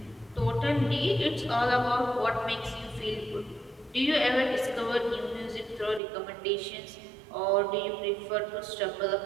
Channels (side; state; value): left; drops out; at 6.0 s